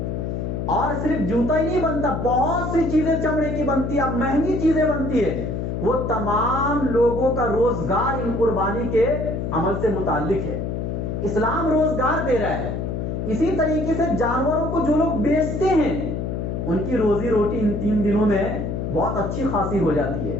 اور صرف جوتا ہی نہیں بنتا، بہت سی چیزیں چمڑے کی بنتی ہے، مہنگی چیزیں بنتی ہے۔ وہ تمام لوگوں کا روزگار ان قربانی کے عمل سے متعلق ہے۔ اسلام روزگار دے رہا ہے۔ اسی طریقے سے جانوروں کو جو لوگ بیچتے ہیں ان کی روزی روٹی ان 3 دنوں میں بہت اچھی خاصی ہو جاتی ہے۔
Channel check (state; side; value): noise; left; hum, 3 dB below the sound